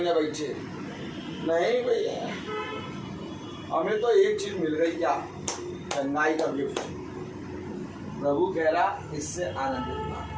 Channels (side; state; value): both; identical; correlation 1.00